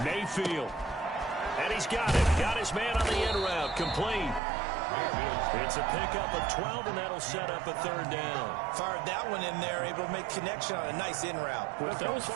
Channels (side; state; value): left; drops out; at 4.4 s